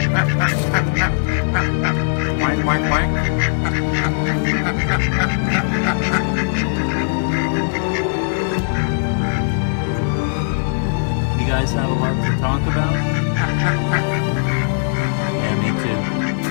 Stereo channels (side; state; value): right; silent; digital silence